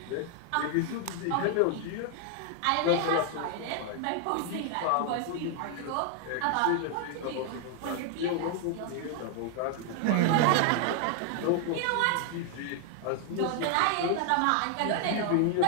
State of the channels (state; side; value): different; both; correlation 0.00